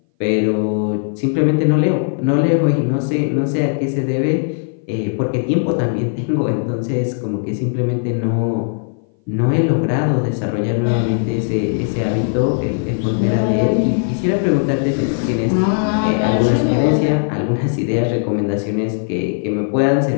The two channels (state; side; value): silent; right; 59 dB below the other